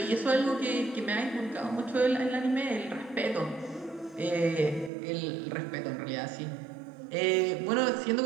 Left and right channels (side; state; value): left; drops out; at 4.9 s